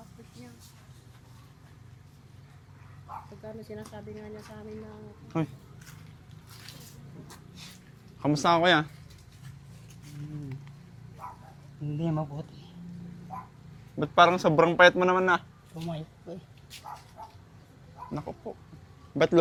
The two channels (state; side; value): identical; both; correlation 1.00